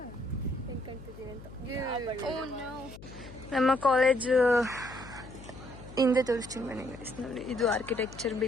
ಅನ್ಕೊಂತಿದ್ದೀನಿ ಅಂತ. ನಮ್ಮ ಕಾಲೇಜ್ ಹಿಂದೆ ತೋರಿಸ್ತೀನಿ ಬನ್ನಿ ಗೈಸ್. ನೋಡಿ, ಇದು ಆರ್ಕಿಟೆಕ್ಚರ್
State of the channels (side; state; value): left; noise; hum, 16 dB below the sound